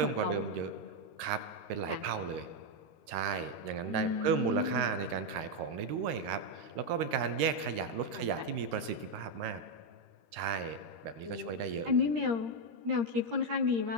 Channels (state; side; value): late; left; 13 ms